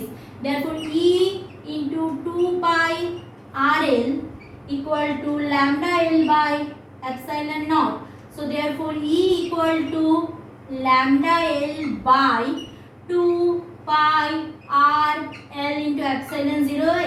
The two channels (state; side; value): identical; both; correlation 1.00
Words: Therefore E into 2 pi RL equal to lambda L by epsilon naught. So therefore E equal to lambda L by 2 pi R L into epsilon 0.